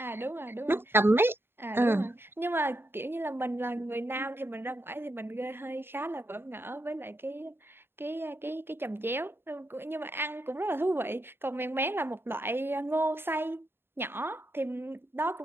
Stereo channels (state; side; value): late; left; 0.11 ms